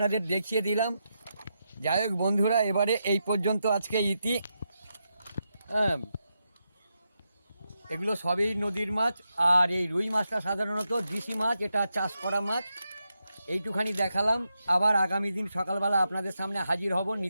দেখিয়ে দিলাম। যাই হোক বন্ধুরা, এবারে এই পর্যন্ত আজকে ইতি। হ্যাঁ, এগুলো সবই নদীর মাছ। আর এই রুই মাছটা সাধারণত দেশি মাছ, এটা চাষ করা মাছ। এইটুখানি দেখালাম। আবার আগামী দিন সকালবেলা আপনাদের সামনে হাজির হব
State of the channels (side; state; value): both; inverted; correlation -0.86